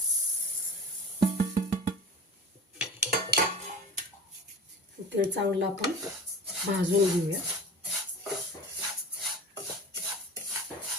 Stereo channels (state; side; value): normal; both; correlation 0.36